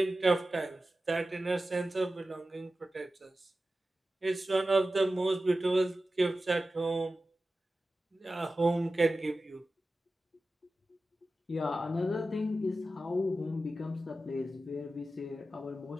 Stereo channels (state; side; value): normal; both; correlation 0.94